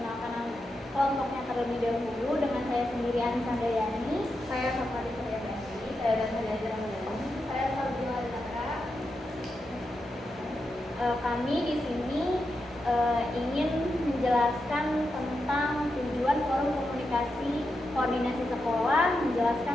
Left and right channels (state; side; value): normal; both; correlation 0.87